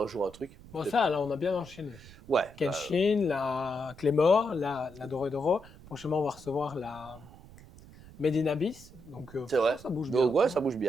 jour un truc. Bon, Peut-être. ça, là, on a bien enchaîné. Ouais. Kenshin, la Claymore, la Doré. Prochainement, on va recevoir la Made in Abyss. Donc, C'est vrai. ça bouge bien. Donc, ouais, ça bouge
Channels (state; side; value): noise; right; rumble, 20 dB below the sound